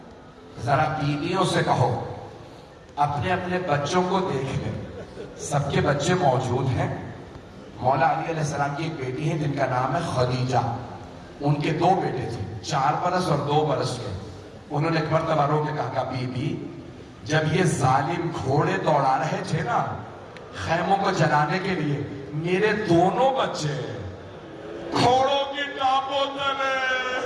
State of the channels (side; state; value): both; identical; correlation 1.00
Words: ذرا بیویوں سے کہو اپنے اپنے بچوں کو دیکھ لیں. سب کے بچے موجود ہیں. مولا علی علیہ السلام کی ایک بیٹی ہے جن کا نام ہے خدیجہ. ان کے 2 بیٹے تھے، 4 برس اور 2 برس کے. انہوں نے ایک مرتبہ رو کے کہا بی بی جب یہ ظالم گھوڑے دوڑا رہے تھے نا خیموں کو جلانے کے لیے، میرے دونوں بچے گھوڑوں کی ٹاپوں تلے